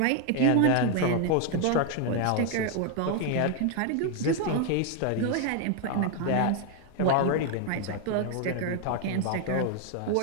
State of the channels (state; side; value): different; both; correlation 0.01